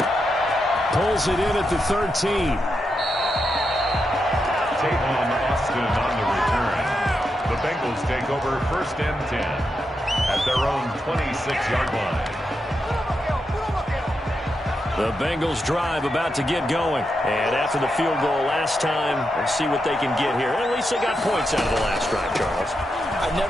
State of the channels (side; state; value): both; normal; correlation 0.85